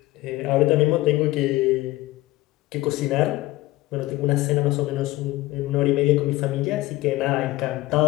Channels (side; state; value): right; quieter; 18.2 dB